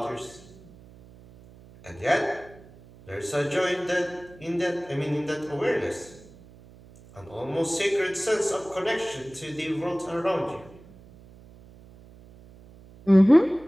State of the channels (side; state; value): right; noise; hum, 22 dB below the sound